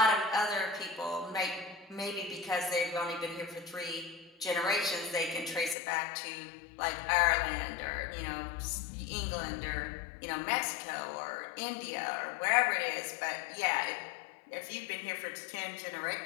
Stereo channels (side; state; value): right; drops out; at 5.8 s